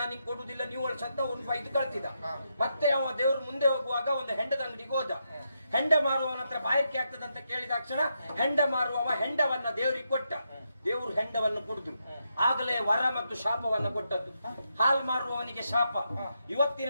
ನಿಂಗೆ ಕೊಡುದಿಲ್ಲ, ನೀವು ಸತ್ತ ಒಂದು ಇದು ಕಳ್ತಿದ್ದ. ಮತ್ತೆ ಅವ ದೇವ್ರು ಮುಂದೆ ಹೋಗುವಾಗ ಒಂದು ಹೆಂಡದ ಅಂಗಡಿಗೆ ಹೋದ. ಹೆಂಡ ಮಾರುವವನ ಹತ್ರ ಬಾಯಾರಿಕೆ ಆಗ್ತದಂತ ಕೇಳಿದಾಕ್ಷಣ ಹೆಂಡ ಮಾರುವವ ಹೆಂಡವನ್ನ ದೇವರಿಗೆ ಕೊಟ್ಟ. ದೇವರು ಹೆಂಡವನ್ನು ಕುಡಿದ್ರು. ಆಗಲೇ ವರ ಮತ್ತು ಶಾಪವನ್ನ ಕೊಟ್ಟದ್ದು. ಹಾಲು ಮಾರುವವನಿಗೆ ಶಾಪ,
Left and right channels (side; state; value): both; inverted; correlation -0.82